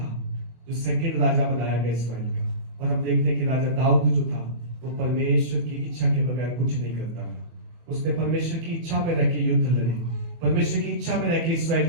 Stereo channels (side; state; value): left; late; 24 ms